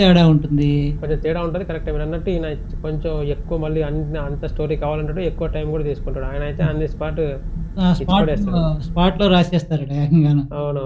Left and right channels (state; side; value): identical; both; correlation 1.00